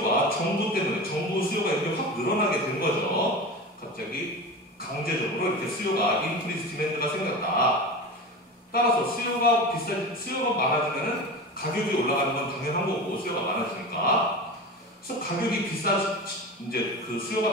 정부 때문에, 정부 수요가 이렇게 확 늘어나게 된 거죠. 갑자기 강제적으로 이렇게 수요가, 인크리스 디맨드가 생겼다. 따라서 수요가 많아지면은 가격이 올라가는 건 당연한 거고, 수요가 많아지니까. 그래서 이제 그 수요가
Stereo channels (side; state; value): both; normal; correlation 0.29